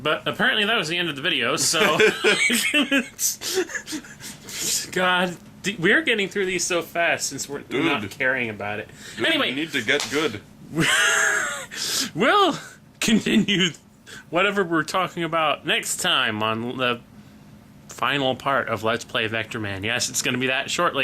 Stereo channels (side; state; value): both; identical; correlation 1.00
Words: But apparently that was the end of the video, so... God, we're getting through these so fast since we're not caring about it. Dude, anyway... we need to get good. We'll continue whatever we're talking about next time on the final part of Let's Play Vectorman. Yes, it's going to be that short,